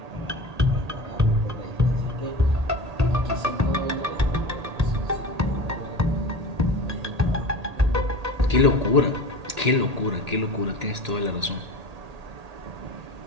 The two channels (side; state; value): left; late; 1.8 ms